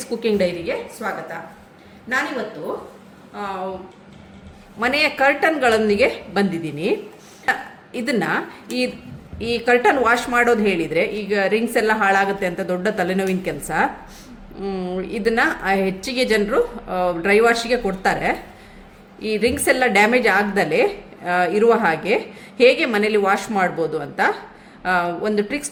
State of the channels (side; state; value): both; identical; correlation 1.00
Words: ಕುಕಿಂಗ್ ಡೈರಿಗೆ ಸ್ವಾಗತ. ನಾನಿವತ್ತು ಮನೆಯ ಕರ್ಟನ್ಗಳೊಂದಿಗೆ ಬಂದಿದ್ದೀನಿ. ಇದನ್ನು ಈ ಕರ್ಟನ್ ವಾಶ್ ಮಾಡೋದು ಹೇಳಿದರೆ, ಈಗ ರಿಂಗ್ಸ್ ಎಲ್ಲ ಹಾಳಾಗುತ್ತೆ ಅಂತ ದೊಡ್ಡ ತಲೆನೋವಿನ ಕೆಲಸ. ಇದನ್ನು ಹೆಚ್ಚಿಗೆ ಜನರು ಡ್ರೈ ವಾಶಿಗೆ ಕೊಡ್ತಾರೆ. ಈ ರಿಂಗ್ಸ್ ಎಲ್ಲ ಡ್ಯಾಮೇಜ್ ಆಗದಲೇ ಇರುವ ಹಾಗೆ ಹೇಗೆ ಮನೇಲಿ ವಾಶ್ ಮಾಡ್ಬೋದು ಅಂತ ಒಂದು